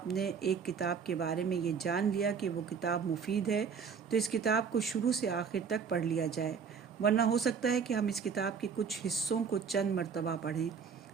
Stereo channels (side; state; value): left; quieter; 6.3 dB